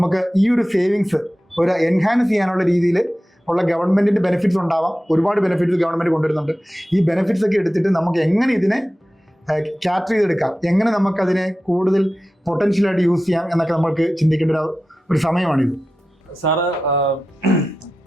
ഈ ഒരു സേവിങ്സ് ഒരു എൻഹാൻസ് ചെയ്യാനുള്ള രീതിയിൽ ഉള്ള ഗവൺമെൻറ്റിൻ്റെ ബെനിഫിറ്റ്സ് ഉണ്ടാവാം. ഒരുപാട് ബെനിഫിറ്റ്സ് ഗവൺമെൻറ് കൊണ്ടുവരുന്നുണ്ട്. ഈ ബെനിഫിറ്റ്സ് ഒക്കെ എടുത്തിട്ട് നമുക്ക് എങ്ങനെ ഇതിനെ ക്യാറ്റർ ചെയ്തെടുക്കാം, എങ്ങനെ നമുക്കതിനെ കൂടുതൽ പൊട്ടൻഷ്യലായിട്ട് യൂസ് ചെയ്യാം എന്നൊക്കെ നമുക്ക് ചിന്തിക്കേണ്ട ഒരു സമയമാണിത്. സാറ്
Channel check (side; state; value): both; normal; correlation 0.93